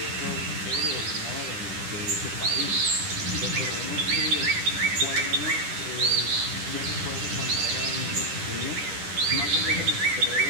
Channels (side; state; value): left; late; 10 ms